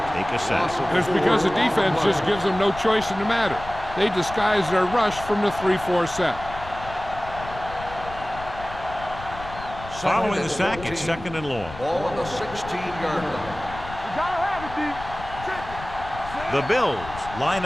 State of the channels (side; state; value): left; noise; rumble, 13 dB below the sound